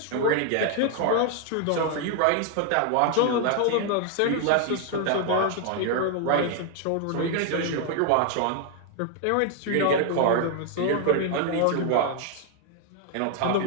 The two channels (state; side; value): different; both; correlation 0.00